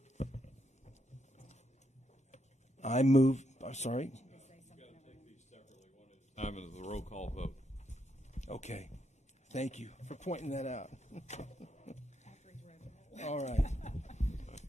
I move. Sorry. Time is the roll call vote. Okay. Thank you for pointing that out. All right.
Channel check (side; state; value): both; normal; correlation 0.80